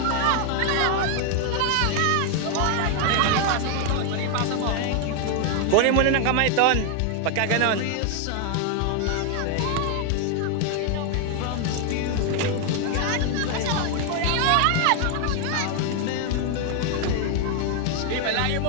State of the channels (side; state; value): both; different; correlation 0.00